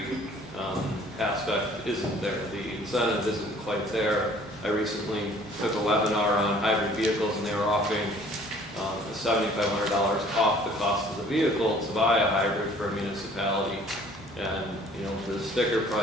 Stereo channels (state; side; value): normal; both; correlation 0.54